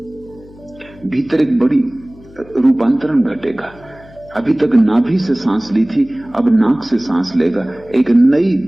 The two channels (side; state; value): left; noise; hum, 23 dB below the sound